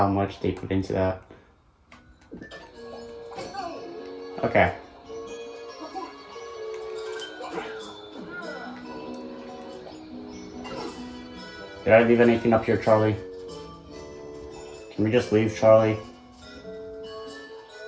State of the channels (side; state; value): both; identical; correlation 1.00